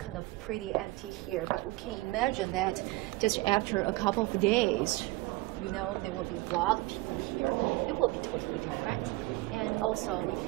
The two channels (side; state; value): left; quieter; 21.1 dB